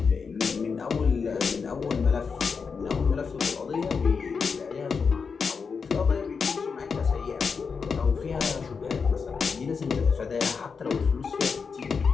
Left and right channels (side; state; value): right; quieter; 5.5 dB